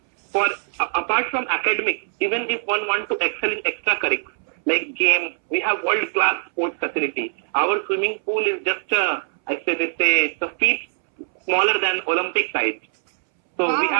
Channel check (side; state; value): left; silent; 64 dB below the other